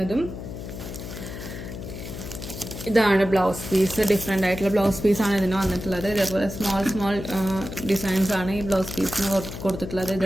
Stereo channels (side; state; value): left; noise; hum, 9 dB below the sound